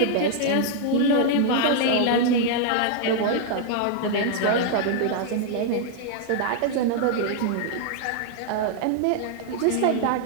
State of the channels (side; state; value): both; different; correlation 0.00